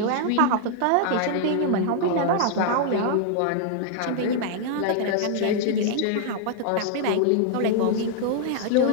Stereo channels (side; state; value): both; different; correlation 0.00